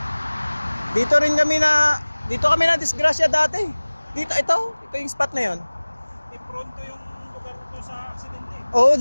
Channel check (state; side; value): inverted; both; correlation -1.00